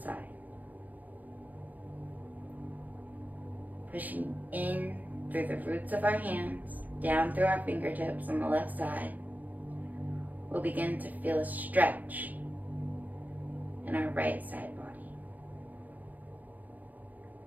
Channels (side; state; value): left; late; 0.082 ms